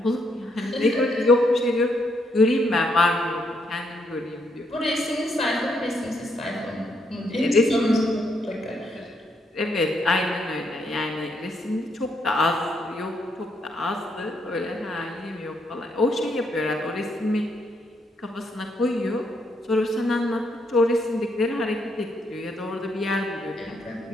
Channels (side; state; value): both; normal; correlation 0.76